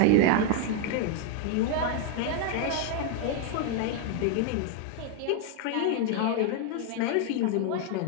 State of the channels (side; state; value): both; different; correlation 0.00